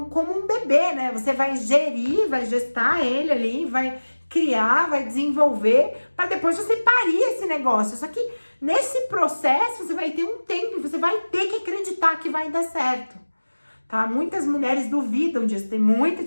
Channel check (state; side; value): inverted; both; correlation -1.00